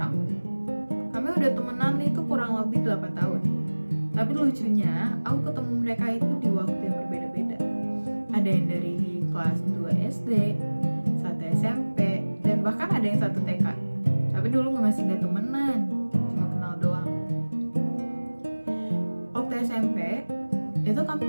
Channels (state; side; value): inverted; both; correlation -1.00